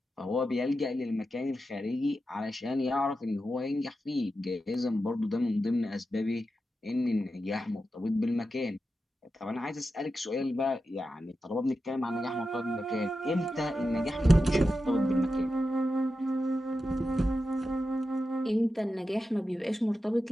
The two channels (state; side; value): normal; both; correlation 0.90